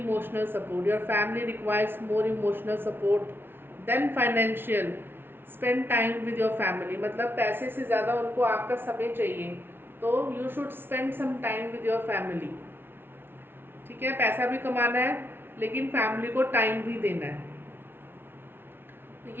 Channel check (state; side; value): late; left; 0.11 ms